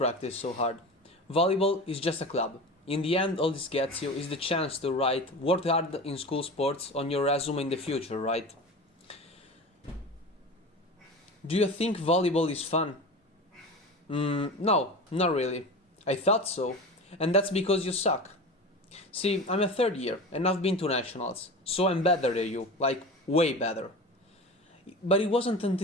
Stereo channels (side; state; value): both; normal; correlation 0.31